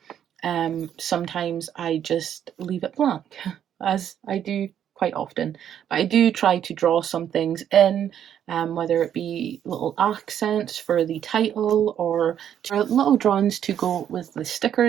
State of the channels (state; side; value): quieter; left; 9.6 dB